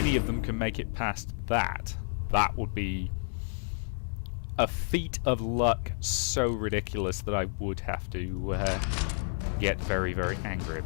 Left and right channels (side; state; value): right; silent; 58 dB below the other